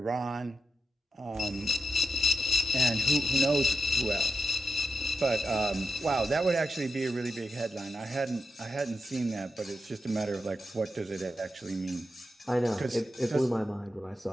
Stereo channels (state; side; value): normal; both; correlation 0.87